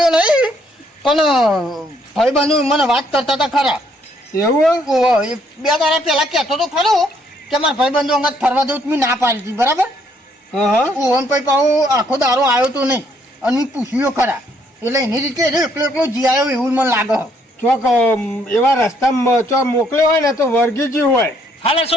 નહીં પણ ભાઈબંધુ મને વાત કરતા હતા ખરા એવું ઓહો, એ 2 દાડા પહેલા કહેતો તો ખરો કે મારા ભાઈબંધુ અંગત ફરવા દઉં મેં ના પાડી હતી બરાબર હા હા ઓહો ને પછી પાછો આખો દારો આવ્યો તો નહીં અને મેં પૂછ્યો ખરા એટલે એની રીતે એકલો એકલો જી આવ્યો એવું મને લાગે ચોક એવા રસ્તામાં ચોક મોકલ્યો હોય ને તો વર્ગીજી હોય હાલે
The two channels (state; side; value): normal; both; correlation 0.69